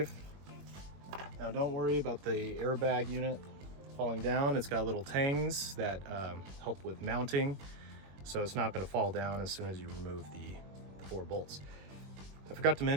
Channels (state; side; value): late; left; 21 ms